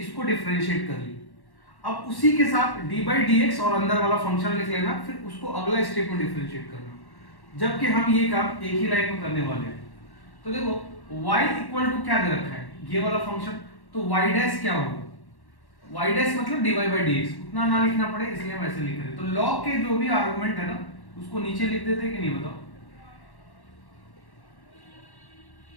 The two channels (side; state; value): right; late; 1.1 ms